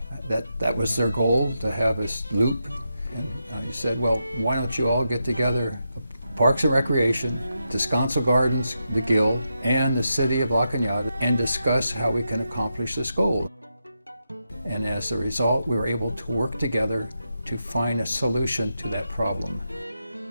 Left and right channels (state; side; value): inverted; both; correlation -0.86